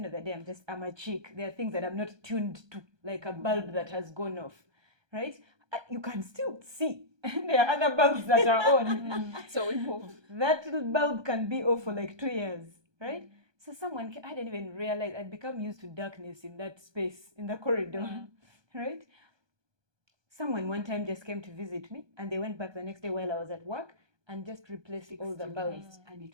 of the day, I'm a chick. There are things that I'm not tuned to, like a bulb that has gone off, right? You can still see. There are other bulbs that are on. so we move. That little bulb can be off for like 2 years, right? So I didn't even realize I'd become used to darkness in that space, in the corridor, right? Someone one time just came to visit me, and they went back the next day while I was at work and just replaced all the bulbs. And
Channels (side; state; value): left; late; 1.2 ms